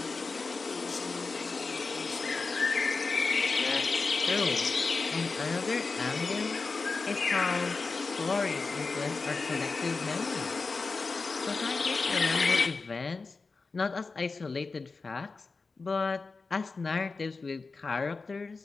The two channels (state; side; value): quieter; right; 4.1 dB